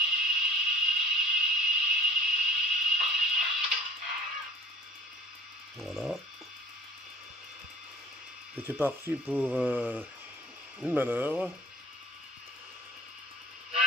Voilà. Et c'est parti pour une manœuvre.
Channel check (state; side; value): normal; both; correlation 0.47